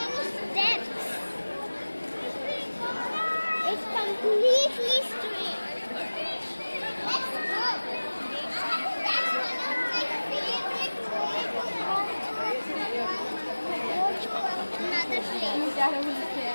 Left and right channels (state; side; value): inverted; both; correlation -1.00